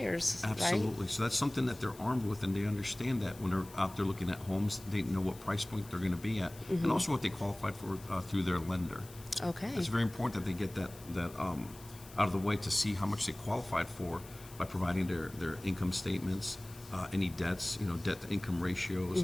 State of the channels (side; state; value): left; noise; hiss, 20 dB below the sound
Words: absolutely. right? So that's something that they're armed with, and they understand that when they're out there looking at homes, they know what price point they're going to be at, and also what they qualified for through their lender. Okay. It's very important that they get that out of the way to see how much they qualified for by providing their income statements, any debts, debt to income ratios.